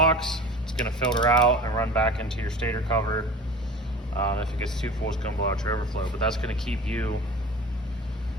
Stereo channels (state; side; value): normal; both; correlation 0.38